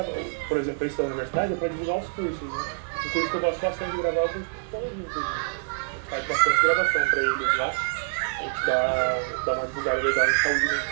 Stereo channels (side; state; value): left; silent; digital silence